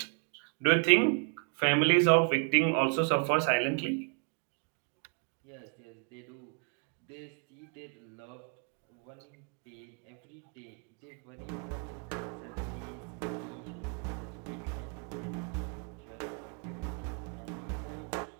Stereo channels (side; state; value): left; quieter; 39.9 dB